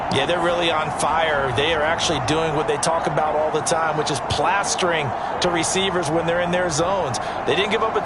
Yeah, they're really on fire. They are actually doing what they talk about all the time, which is plastering to receivers when they're in their zones. They didn't give up a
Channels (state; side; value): identical; both; correlation 1.00